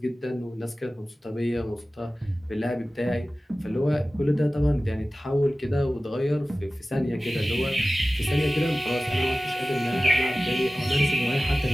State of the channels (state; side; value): normal; both; correlation 0.96